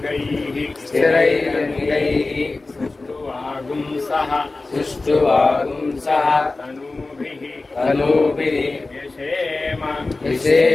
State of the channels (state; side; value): quieter; right; 3.4 dB